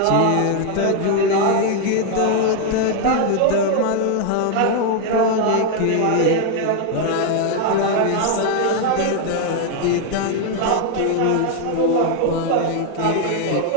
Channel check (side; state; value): both; different; correlation 0.00